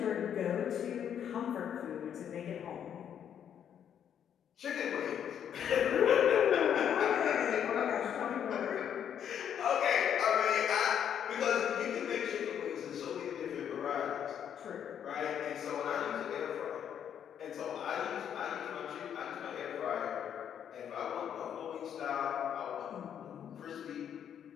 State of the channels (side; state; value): right; quieter; 9.0 dB